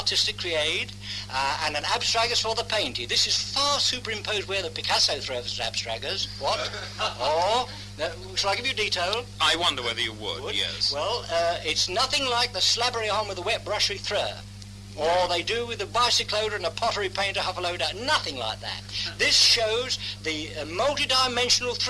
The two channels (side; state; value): both; identical; correlation 1.00